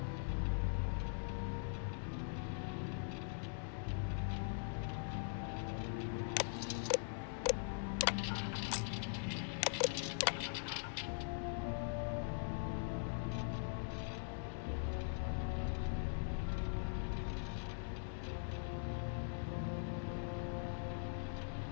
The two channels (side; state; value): right; silent; digital silence